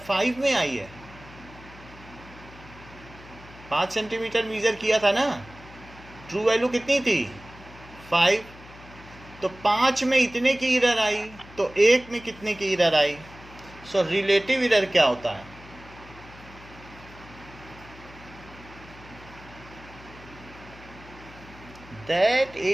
5 में आई है? 5 सेंटीमीटर मीजर किया था ना, ट्रू वैल्यू कितनी थी? 5। तो 5 में इतने की एरर आई, तो 1 में कितने की एरर आई? सो रिलेटिव एरर क्या होता है? That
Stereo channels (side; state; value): left; noise; hum, 20 dB below the sound